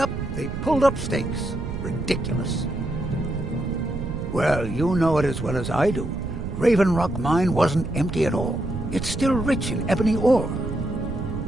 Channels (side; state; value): right; noise; rumble, 5 dB below the sound